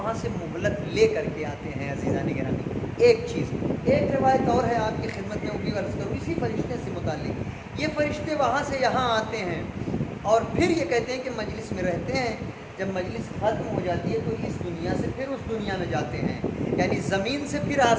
سے مہلت لے کر کے آتے ہیں۔ عزیزان گرامی، ایک چیز، ایک روایت اور ہے آپ کی خدمت میں، وہ بھی عرض کروں اسی فرشتے سے متعلق۔ یہ فرشتے وہاں سے یہاں آتے ہیں اور پھر یہ کہتے ہیں کہ مجلس میں رہتے ہیں، جب مجلس ختم ہو جاتی ہے تو اس دنیا سے پھر اس دنیا میں جاتے ہیں، یعنی زمین سے پھر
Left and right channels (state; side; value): identical; both; correlation 1.00